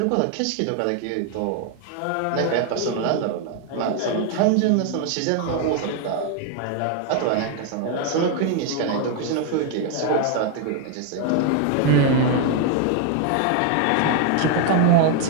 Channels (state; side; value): different; both; correlation 0.01